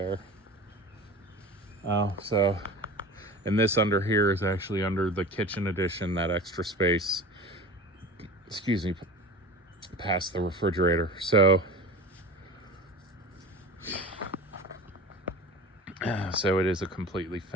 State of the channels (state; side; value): normal; both; correlation 0.35